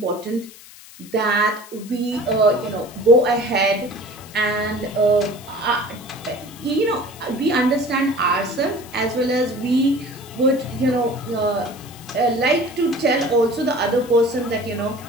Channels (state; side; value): noise; left; hiss, 20 dB below the sound